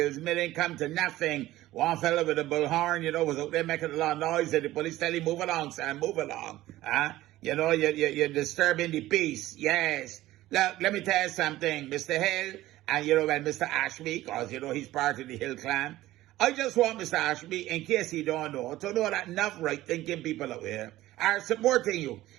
Milling come to nothing. One fella with a bullhorn, was out there making a lot of noise and the police tell him, move along, son, move along. You're disturbing the peace. Yes. Look, let me tell you something, Mr. Hill, and Mr. Ashby, because, he's part of the Hill clan. I just want Mr. Ashby, in case he don't know, to know that enough right-thinking people out here are supporting you.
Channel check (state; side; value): quieter; left; 15.9 dB